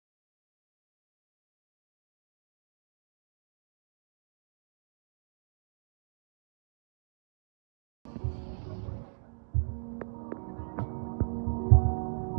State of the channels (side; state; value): left; silent; digital silence